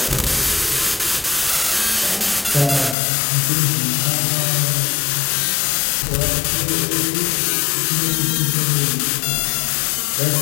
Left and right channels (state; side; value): drops out; right; at 3.0 s